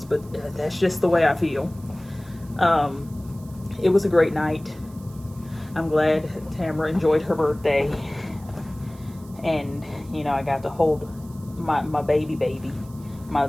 but that's just the way I feel. It was a great night. I'm glad Tamara enjoyed her birthday. And, you know, I got to hold my baby, my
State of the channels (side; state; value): right; noise; hiss, 25 dB below the sound